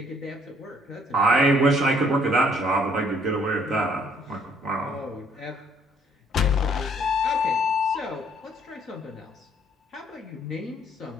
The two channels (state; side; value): normal; both; correlation 0.62